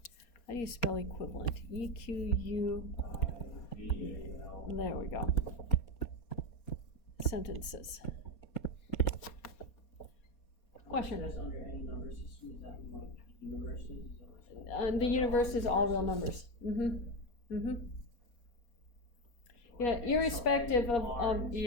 How do you spell equivalent? E-Q-U. There we go. Sentences. Question? That's under any number system, is that like universes? Is that what you're saying? The universe is all real numbers. Mm-hmm. Mm-hmm. Yeah, irrespective of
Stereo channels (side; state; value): right; late; 4.2 ms